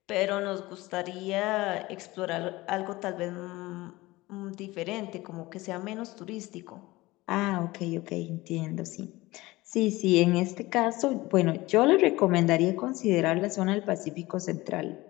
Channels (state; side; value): quieter; right; 19.9 dB